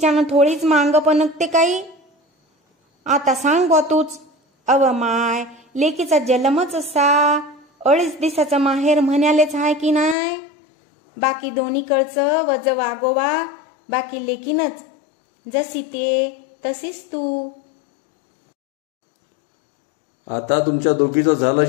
थोडीच मांग पणकते काही. आता सांग बा तूच. अव माय, लेकीचा जन्मच असा 2.5 दिवसाचा माहेर म्हणालेच आहे की नाही? बाकी दोन्हीकडचं वज वागोवा, बाकी लेकीनच. जशी ते तशीच तू. आता तुमच्या दोघीचं झालं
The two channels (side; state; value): right; drops out; at 10.2 s